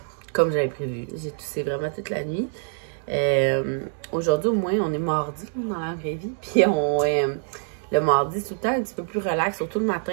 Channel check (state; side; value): silent; left; 62 dB below the other